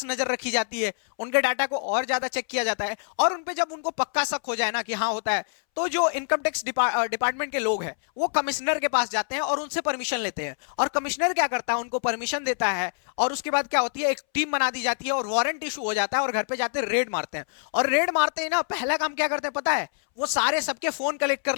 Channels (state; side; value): silent; right; 61 dB below the other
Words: नजर रखी जाती है, उनके डाटा को और ज्यादा चेक किया जाता है, और उन पे जब उनको पक्का शक हो जाए ना कि हाँ होता है, तो जो इनकम टैक्स डिपार्टमेंट के लोग हैं वो कमिश्नर के पास जाते हैं और उनसे परमिशन लेते हैं। और कमिश्नर क्या करता है, उनको परमिशन देता है, और उसके बाद क्या होती है, एक टीम बना दी जाती है और वारंट इशू हो जाता है, और घर पे जाते रेड मारते हैं। और रेड मारते ही ना पहला काम क्या करते हैं पता है, वो सारे सबके फोन कलेक्ट कर